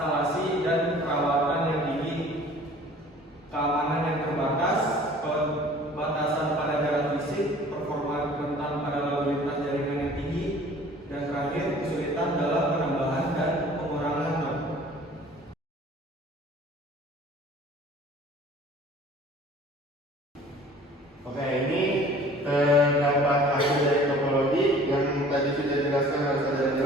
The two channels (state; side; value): normal; both; correlation 0.49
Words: dan perawatan yang tinggi, keamanan yang terbatas, pembatasan pada jarak fisik, performa rentan pada lalu lintas jaringan yang tinggi, dan terakhir kesulitan dalam penambahan dan pengurangan node. Oke, ini terdapat hasil dari topologi yang tadi sudah dijelaskan oleh saudara